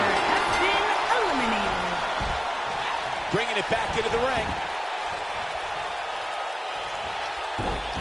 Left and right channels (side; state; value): both; identical; correlation 1.00